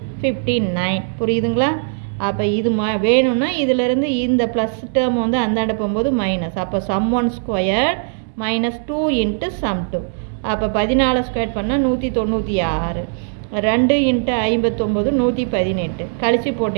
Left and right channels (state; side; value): silent; left; digital silence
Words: 59. புரியுதுங்களா? அப்போ இது வேணும்னா இதிலேருந்து இந்த ப்ளஸ் டேர்ம் வந்து அந்தாண்ட போகும்போது மைனஸ். அப்போ சம் 1² மைனஸ் 2 இன்ட்டு சம் 2. அப்போ 14² பண்ணால் 196. 2 இன்ட்டு 59 118. கழித்து